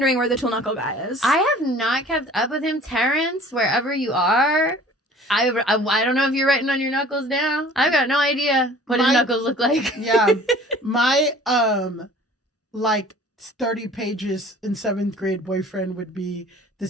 where the Tool Knuckle guy is. I have not kept up with him. Terrence, wherever you are. I don't know if you're writing on your knuckles now. I've got no idea what his knuckles look like. Yeah. My, like 30 pages in 7th grade boyfriend would be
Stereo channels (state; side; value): normal; both; correlation 0.48